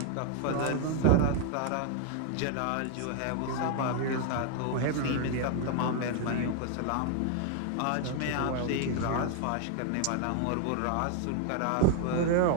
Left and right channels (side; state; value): both; different; correlation 0.00